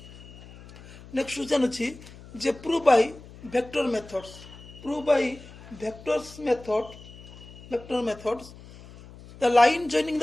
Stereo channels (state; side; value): noise; left; hum, 19 dB below the sound